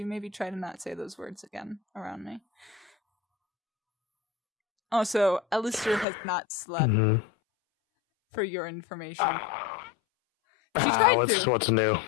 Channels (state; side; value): drops out; right; at 6.1 s